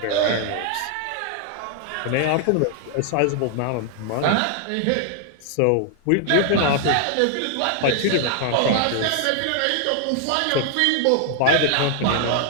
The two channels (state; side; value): different; both; correlation 0.00